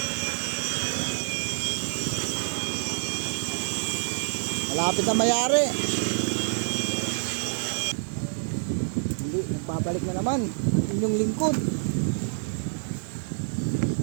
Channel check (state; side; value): silent; left; digital silence